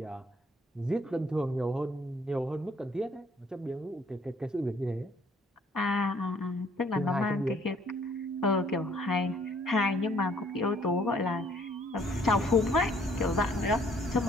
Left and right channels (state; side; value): normal; both; correlation 0.62